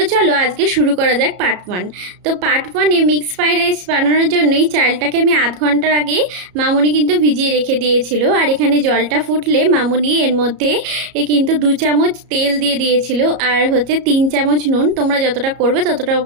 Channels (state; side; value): late; left; 34 ms